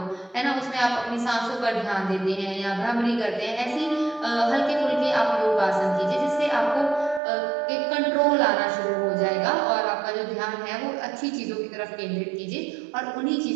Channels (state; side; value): drops out; left; at 7.2 s